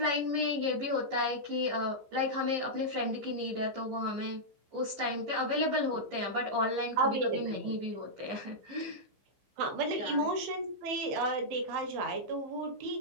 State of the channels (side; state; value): left; late; 14 ms